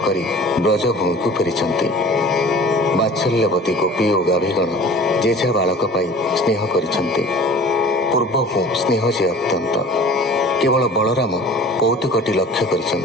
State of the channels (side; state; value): both; normal; correlation 0.44